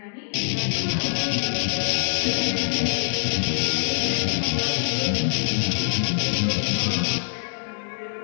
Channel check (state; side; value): silent; right; digital silence